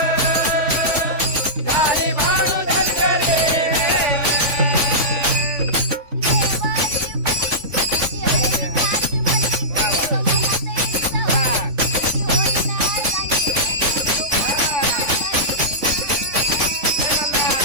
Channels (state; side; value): late; left; 3.5 ms